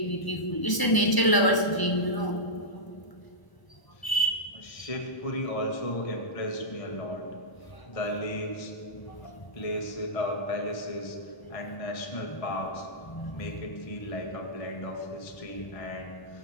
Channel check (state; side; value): late; right; 1.0 ms